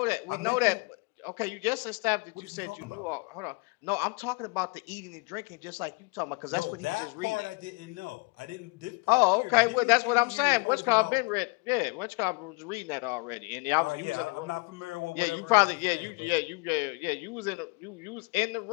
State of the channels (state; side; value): quieter; right; 28.5 dB